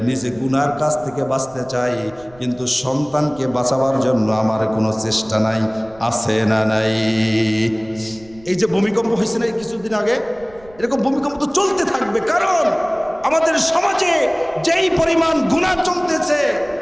নিজে গুনার কাছ থেকে বাঁচতে চাই, কিন্তু সন্তানকে বাঁচাবার জন্য আমার কোনো চেষ্টা নাই। আছে না নাই? এই যে ভূমিকম্প হয়েছে না কিছুদিন আগে, এরকম ভূমিকম্প তো চলতে থাকবে, কারণ আমাদের সমাজে যেই পরিমাণ গুনাহ চলতেছে,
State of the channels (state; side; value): noise; right; rumble, 24 dB below the sound